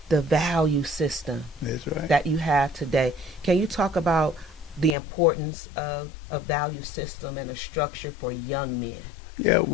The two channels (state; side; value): drops out; right; at 5.0 s